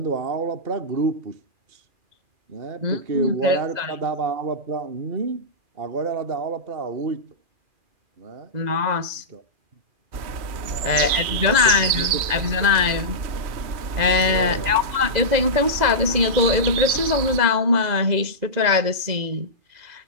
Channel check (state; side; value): late; left; 2.4 ms